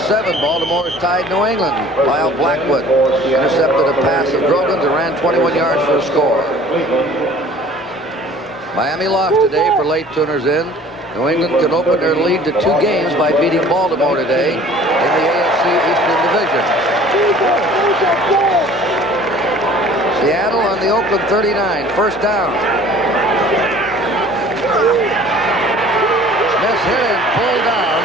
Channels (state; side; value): normal; both; correlation 0.49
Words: Baltimore is tied New England. Lyle Blackwood intercepted a pass of Grogan's and ran 21 yards for a score. Miami lost today for late tuners in. New England can open their lead to 2 games by beating Baltimore today in the AFC Eastern Division. Seattle on the Oakland 39, first down. Smith hit and pulled down